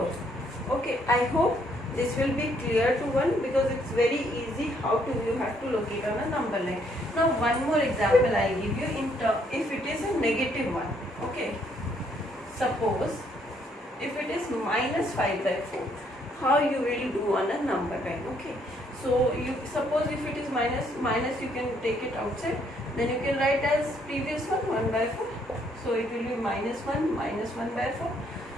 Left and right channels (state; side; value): normal; both; correlation 0.69